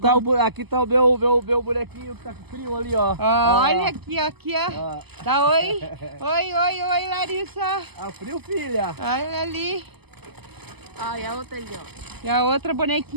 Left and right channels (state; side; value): late; left; 0.98 ms